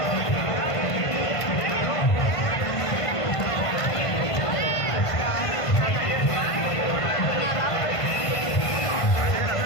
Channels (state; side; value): late; right; 1.5 ms